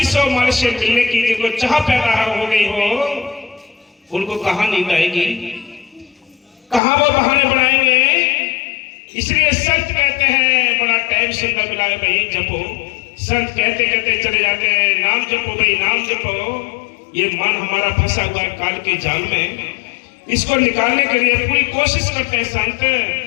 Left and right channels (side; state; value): right; drops out; at 6.8 s